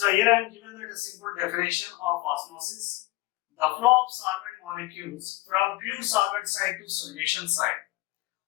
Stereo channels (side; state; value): right; quieter; 19.8 dB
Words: here I am given that a simple definition of osmosis: the flow of solvent molecules from pure solvent side to solution side.